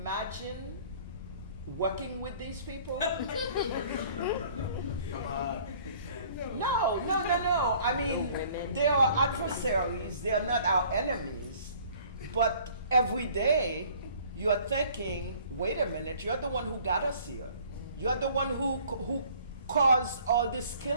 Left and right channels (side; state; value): both; inverted; correlation -0.54